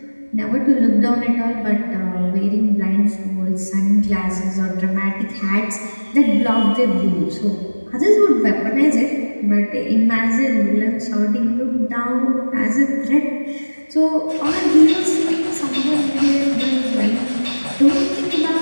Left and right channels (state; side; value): inverted; both; correlation -1.00